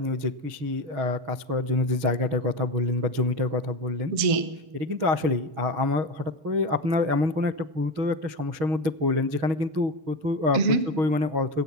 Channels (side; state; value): left; late; 6.4 ms